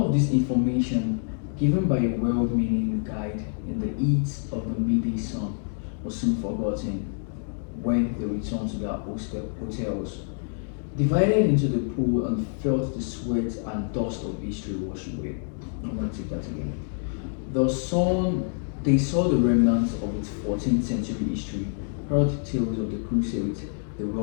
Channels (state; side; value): silent; right; 60 dB below the other